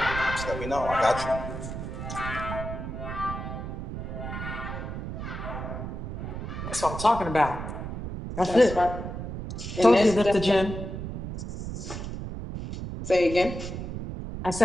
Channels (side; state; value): right; noise; rumble, 7 dB below the sound